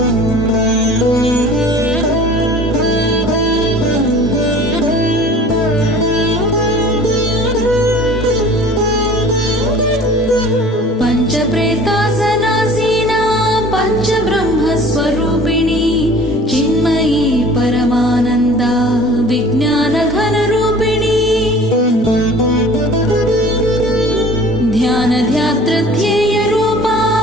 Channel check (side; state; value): both; normal; correlation 0.46